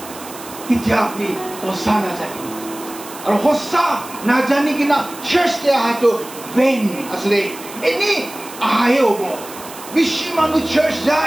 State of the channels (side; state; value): right; noise; hiss, 15 dB below the sound